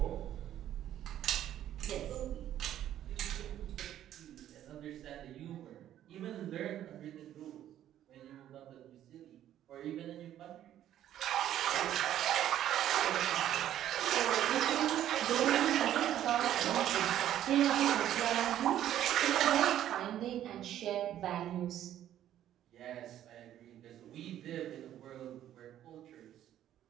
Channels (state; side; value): quieter; left; 11.7 dB